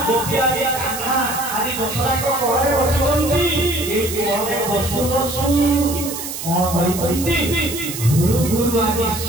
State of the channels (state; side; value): noise; right; hiss, 7 dB below the sound